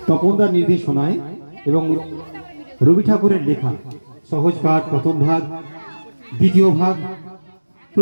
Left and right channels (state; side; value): inverted; both; correlation -1.00